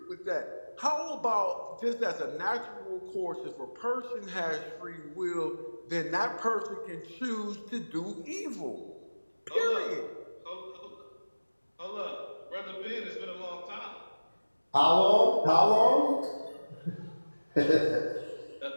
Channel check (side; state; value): both; inverted; correlation -1.00